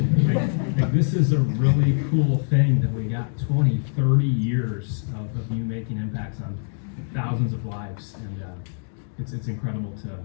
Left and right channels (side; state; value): right; silent; digital silence